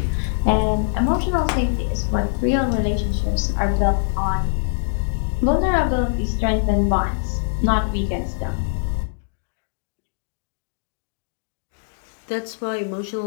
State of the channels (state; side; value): silent; right; digital silence